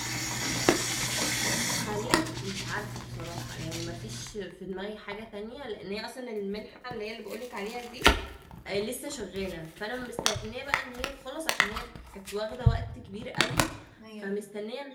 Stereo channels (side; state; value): both; identical; correlation 1.00